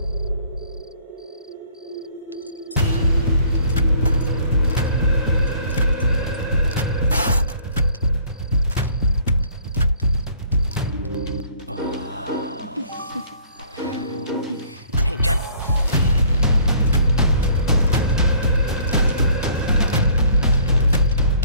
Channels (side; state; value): both; inverted; correlation -0.57